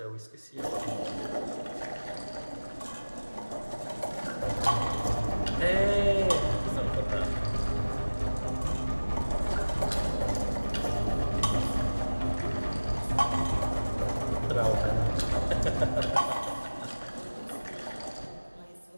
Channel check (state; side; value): inverted; both; correlation -1.00